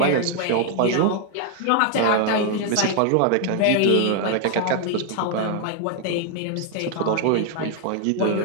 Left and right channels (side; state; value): both; different; correlation 0.00